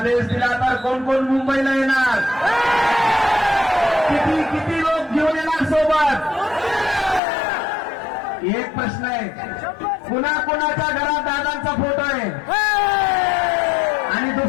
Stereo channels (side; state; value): right; drops out; at 7.2 s